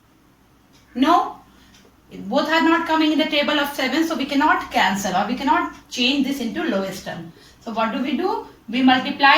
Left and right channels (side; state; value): both; identical; correlation 1.00